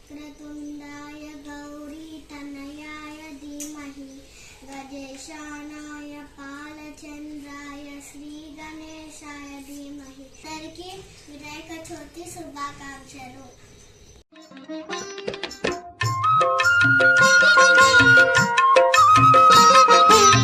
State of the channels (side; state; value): both; identical; correlation 1.00